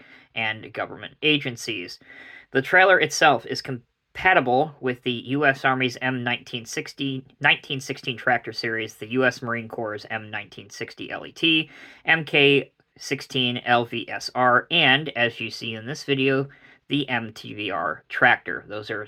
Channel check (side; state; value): both; identical; correlation 1.00